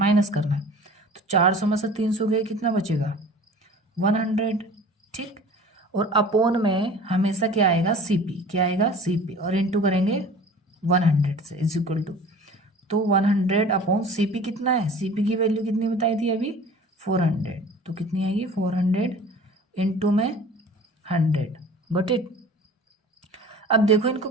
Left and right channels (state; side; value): normal; both; correlation 0.43